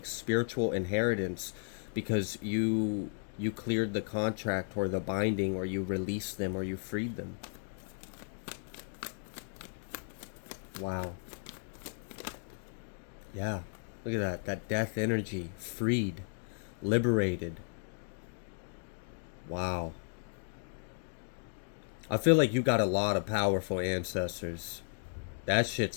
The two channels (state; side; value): silent; right; digital silence